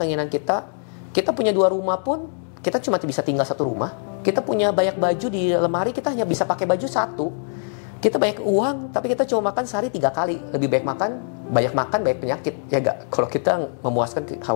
kita. Kita punya 2 rumah pun, kita cuma bisa tinggal 1 rumah. Kita punya banyak baju di lemari, kita hanya bisa pakai baju 1. Kita banyak uang, tapi kita cuma makan sehari 3 kali. Lebih baik banyak makan, banyak penyakit. Ya gak? Kalau kita memuaskan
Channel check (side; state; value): right; silent; 64 dB below the other